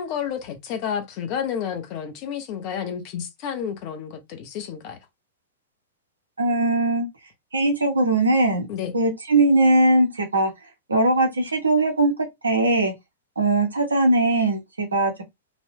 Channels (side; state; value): both; inverted; correlation -0.58